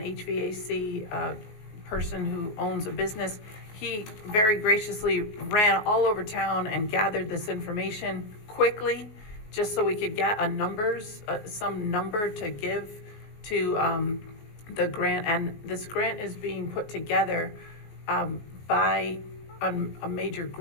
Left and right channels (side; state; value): right; late; 19 ms